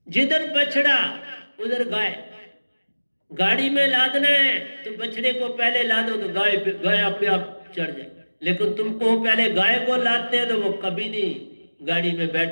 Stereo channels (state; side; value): inverted; both; correlation -1.00